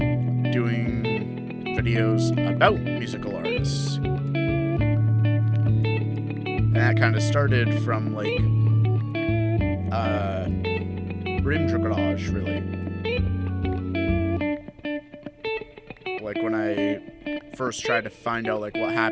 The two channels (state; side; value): identical; both; correlation 1.00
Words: doing videos about musical artists. And that kind of started from, like, Garage, really. Like, when I first tried to find out, like, what